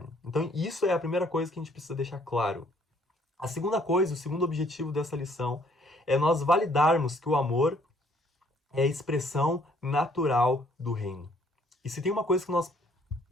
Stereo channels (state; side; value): normal; both; correlation 0.63